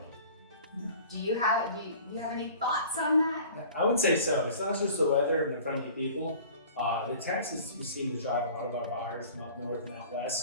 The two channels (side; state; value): both; inverted; correlation -0.45